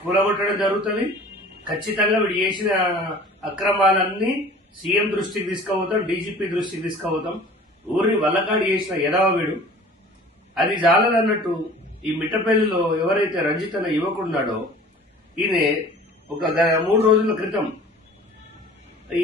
కూలగొట్టడం జరుగుతుంది. ఖచ్చితంగా వీడు చేసిన అక్రమాలన్నీ సీఎం దృష్టికి తీసుకుపోతాం, డీజీపీ దృష్టికి తీసుకుపోతాం. ఊరిని వల్లకాడి చేసిన ఎదవ వీడు. అది చాలదన్నట్టు ఈ మిట్టపల్లిలో ఎవరైతే రంజిత్ అనే యువకుడున్నాడో ఈయన ఒక 3 రోజుల క్రితం ఈ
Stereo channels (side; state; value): both; normal; correlation 0.45